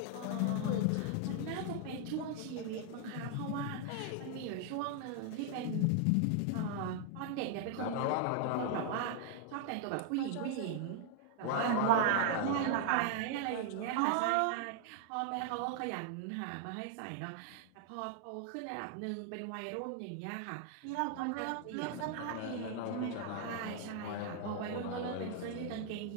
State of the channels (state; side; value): different; both; correlation 0.00